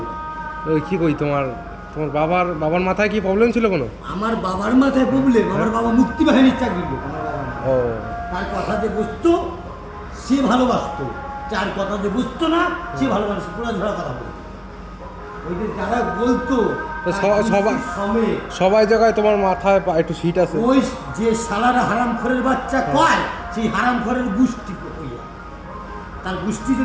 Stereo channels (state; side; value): identical; both; correlation 1.00